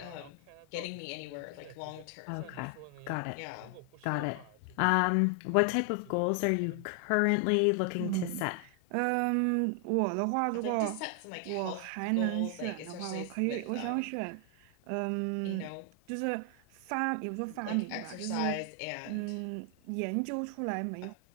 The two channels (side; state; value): both; different; correlation 0.00